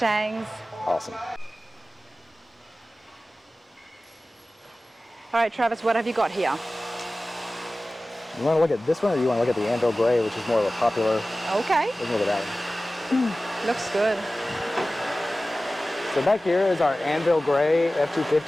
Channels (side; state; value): both; normal; correlation 0.96